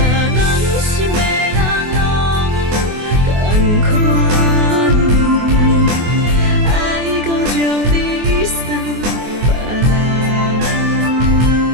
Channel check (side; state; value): left; late; 24 ms